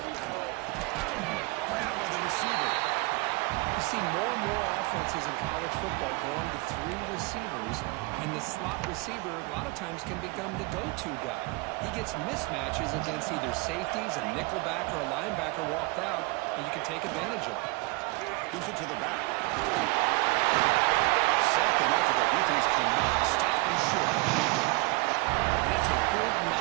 by the receiver. You see more and more offenses in college football going to 3 receivers, and the slot receiver a lot of times can become the go-to guy. He gets mismatches against either safeties, a nickelback, or a linebacker walked out, and you can take advantage of it. Gives it to the back. Sacked enough that the defense cannot stop him short. And that's a good,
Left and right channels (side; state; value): left; quieter; 25.1 dB